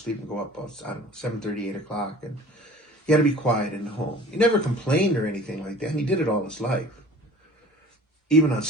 and go up about, 7:30, 8 o'clock, and he had to be quiet in the home. He never complained or anything like that, and he did it all his life. Even on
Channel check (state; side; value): normal; both; correlation 0.45